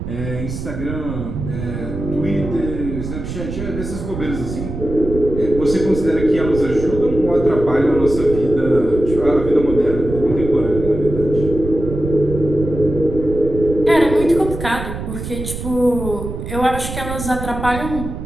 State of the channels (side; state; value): right; noise; rumble, 7 dB below the sound